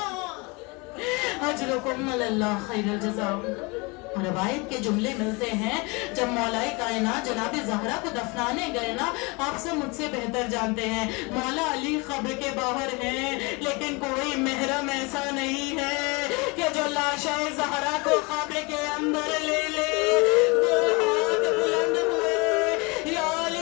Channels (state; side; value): quieter; right; 27.8 dB